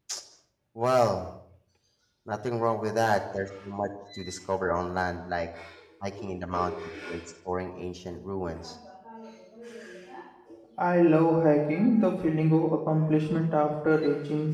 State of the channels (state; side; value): identical; both; correlation 1.00